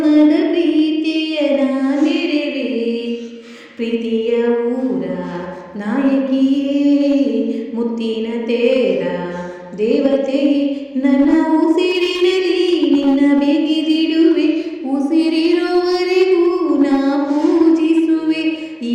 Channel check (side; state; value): both; identical; correlation 1.00